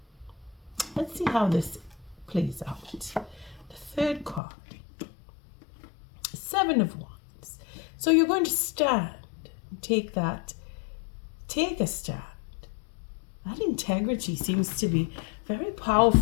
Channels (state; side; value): drops out; right; at 4.4 s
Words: Let's see how this plays out. The third card, Seven of Wands. So you're going to stand, take a stand. That integrity seems to be very